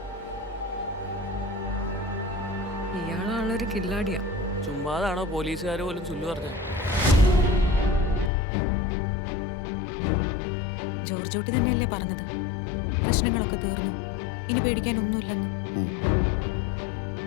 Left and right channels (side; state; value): right; drops out; at 8.3 s